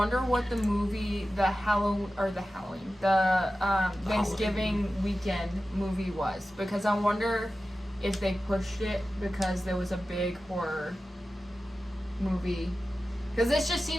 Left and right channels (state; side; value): normal; both; correlation 0.94